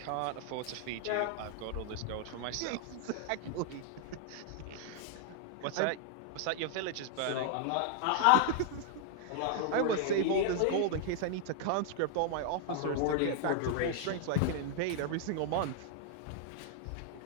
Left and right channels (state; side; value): different; both; correlation 0.00